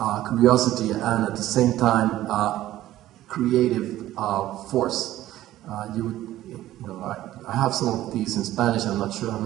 curiosity and at the same time creative force. I have some of these in Spanish. I'm not sure how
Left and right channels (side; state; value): left; quieter; 14.4 dB